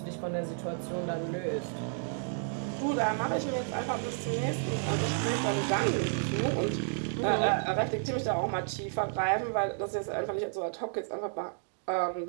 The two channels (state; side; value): silent; left; digital silence